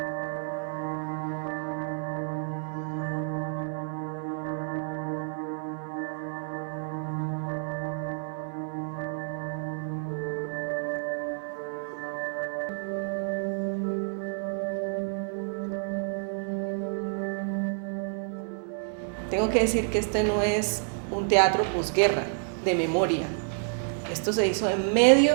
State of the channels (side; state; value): left; silent; digital silence